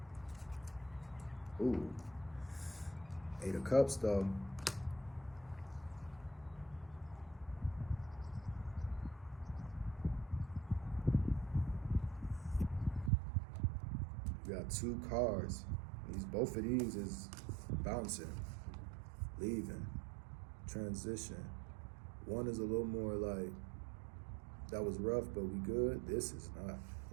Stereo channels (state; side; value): drops out; left; at 13.1 s